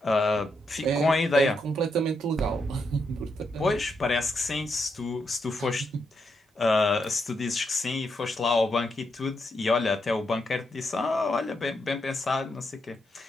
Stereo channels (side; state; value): both; normal; correlation 0.81